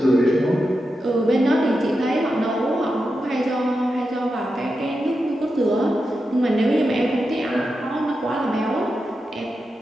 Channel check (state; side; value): normal; both; correlation 0.89